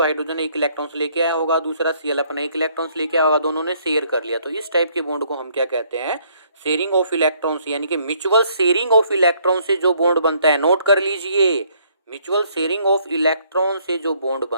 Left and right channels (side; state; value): both; inverted; correlation -0.66